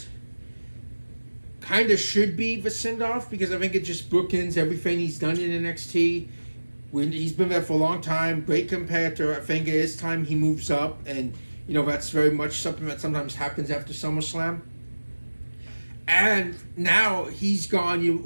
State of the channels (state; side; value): inverted; both; correlation -1.00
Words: kind of should be the send-off because I think it just bookends everything he's done in NXT. He's been there for a long time, great competitor. I think it is time he moves up, and you know that's very much something that sometimes happens after SummerSlam. And now he's gone. You